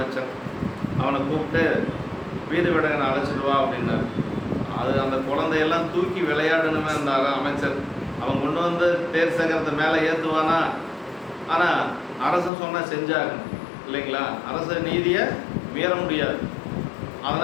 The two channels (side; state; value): right; drops out; at 12.5 s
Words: அவனை கூப்பிட்டு வீடு விடங்கனை அழைச்சிட்டு வா அப்படின்னாரு. அது அந்த குழந்தையெல்லாம் தூக்கி விளையாடணுமே இருந்தார் அமைச்சர். அவன் கொண்டு வந்து தேர் சக்கரத்தை மேலே ஏற்றுவானா? ஆனால் அரசன் சொன்னால் செஞ்சாகணும் இல்லைங்களா? அரச நீதியை மீற முடியாது.